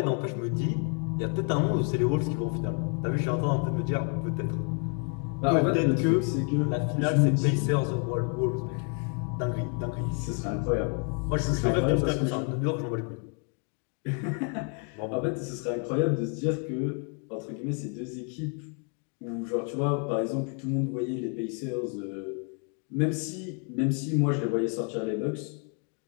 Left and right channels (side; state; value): right; quieter; 39.9 dB